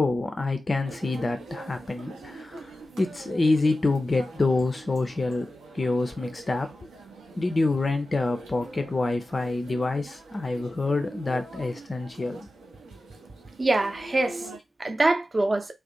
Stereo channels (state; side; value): normal; both; correlation 0.94